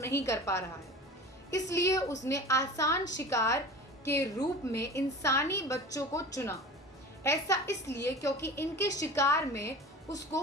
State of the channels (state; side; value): normal; both; correlation 0.36